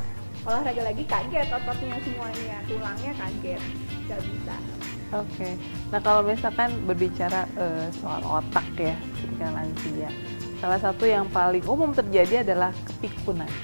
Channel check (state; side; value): inverted; both; correlation -1.00